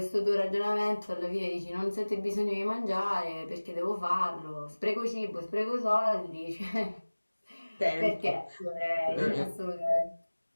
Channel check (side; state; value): both; inverted; correlation -1.00